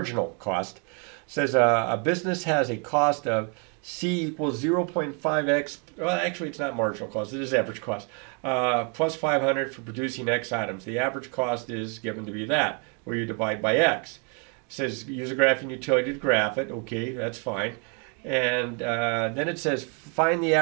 cost. It says a business has a cost of C equals 0.5x. Well, actually, it's not marginal cost. It is average cost. Plus 500 for producing X items. The average cost is given to be that, where you divide by X. It says use a graphing utility to graph it. Okay, that's fine. And then it says find the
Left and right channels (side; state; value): left; quieter; 37.7 dB